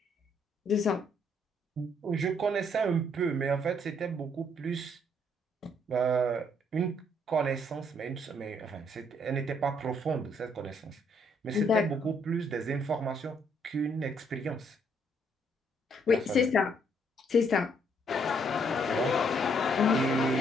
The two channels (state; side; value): normal; both; correlation 0.69